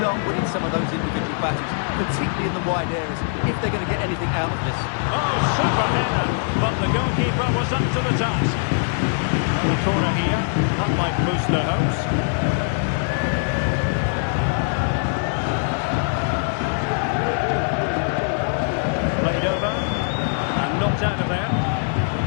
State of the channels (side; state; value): right; silent; digital silence